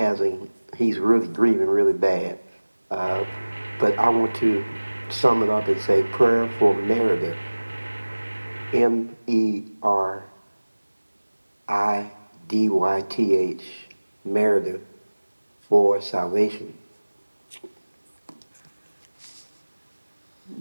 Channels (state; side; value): inverted; both; correlation -1.00